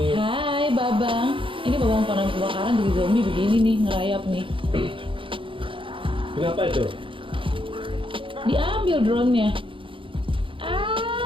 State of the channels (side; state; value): left; late; 0.25 ms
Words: Hai Babang. Ini Babang pemadam kebakaran jadi zombie begini nih, ngerayap nih. Kenapa itu? Diambil drone-nya.